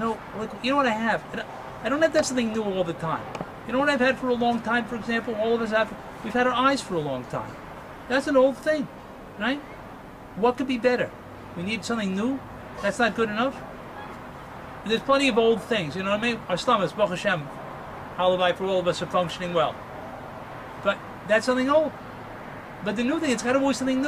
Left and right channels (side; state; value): both; identical; correlation 1.00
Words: know what I have? I don't have to have something new all the time. You know what I've had for a long time, for example? All of us have, we've had our eyes for a long time. That's an old thing, right? What could be better? We need something new? That's not good enough? There's plenty of old things, you know what I mean? Our stomachs, Baruch Hashem, Halavai, for all of us are functioning well. But that's something old. But the new thing, it's got to be something